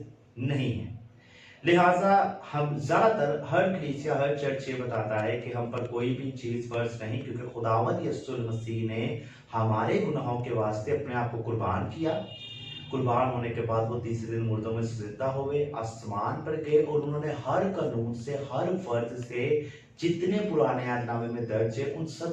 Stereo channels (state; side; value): identical; both; correlation 1.00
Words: नहीं है। लिहाजा हम ज़्यादातर हर कलीसिया हर चर्च ये बताता है कि हम पर कोई भी चीज़ फ़र्ज नहीं, क्योंकि खुदावंद यीशु मसीह ने हमारे गुनाहों के वास्ते अपने आप को कुर्बान किया। कुर्बान होने के बाद वो तीसरे दिन मुर्दों में से जिंदा हुए, आसमान पर गए और उन्होंने हर कानून से हर फर्ज से जितने पुराने अहदनामे में दर्ज है उन